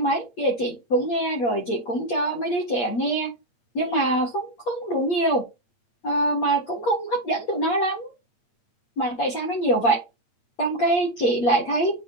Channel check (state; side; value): late; right; 8.4 ms